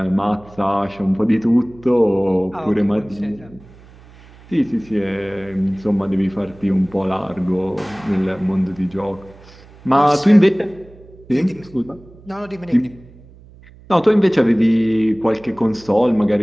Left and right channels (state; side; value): noise; right; hum, 23 dB below the sound